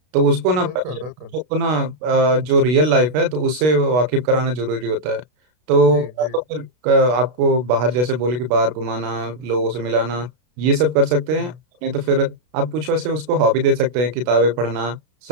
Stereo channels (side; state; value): left; late; 32 ms